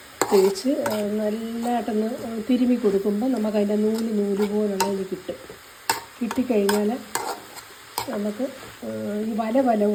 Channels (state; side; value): identical; both; correlation 1.00